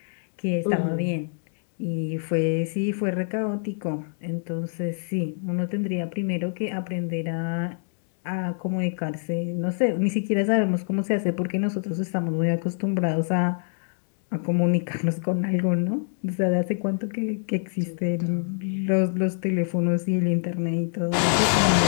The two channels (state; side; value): silent; right; digital silence